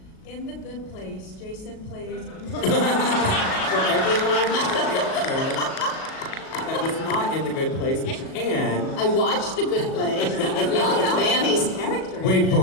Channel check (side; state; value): right; late; 37 ms